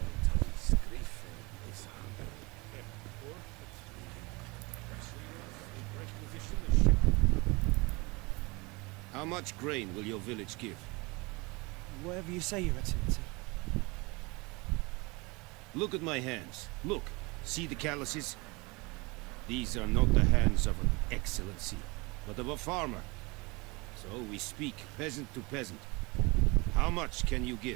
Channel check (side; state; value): left; quieter; 26.0 dB